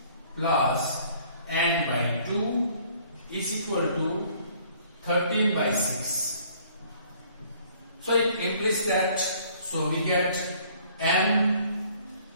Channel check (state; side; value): inverted; both; correlation -0.58